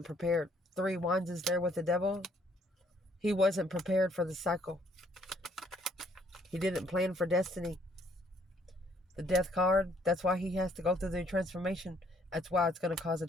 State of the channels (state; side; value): normal; both; correlation 0.65